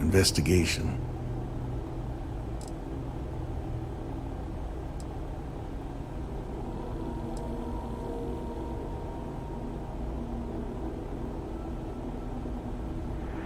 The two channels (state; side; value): identical; both; correlation 1.00